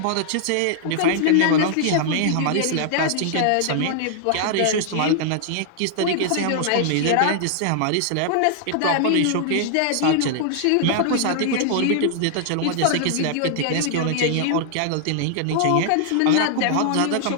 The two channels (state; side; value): different; both; correlation 0.00